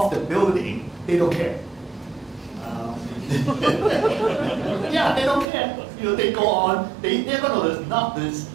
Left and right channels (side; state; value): left; drops out; at 5.5 s